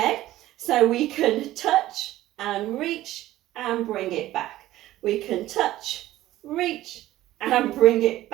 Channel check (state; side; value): quieter; left; 15.2 dB